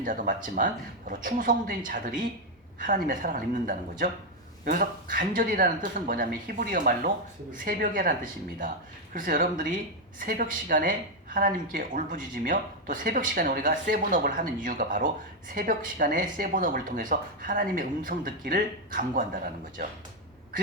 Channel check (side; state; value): both; normal; correlation 0.03